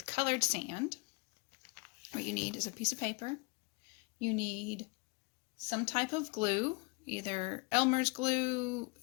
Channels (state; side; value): quieter; right; 28.4 dB